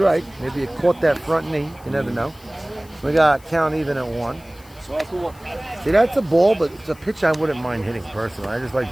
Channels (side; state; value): left; noise; hiss, 26 dB below the sound